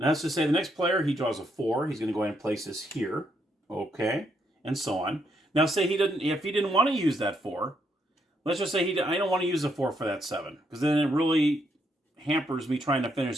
let's just say the next player, he draws a 4. He's going to go ahead and place this here. Okay. And so on. Now say if he didn't want to use that 4, let's just say I don't want to use a 4 for that 7, because then it really hampers me trying to finish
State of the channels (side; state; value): both; normal; correlation 0.75